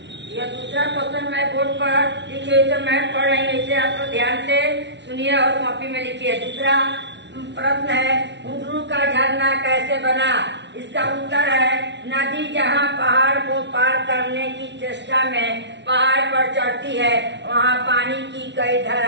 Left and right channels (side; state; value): left; late; 0.51 ms